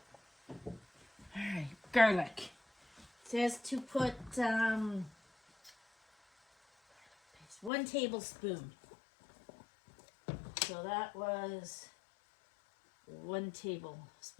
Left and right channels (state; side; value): drops out; right; at 7.7 s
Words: Alright, garlic. It says to put 1 tablespoon. So that was 1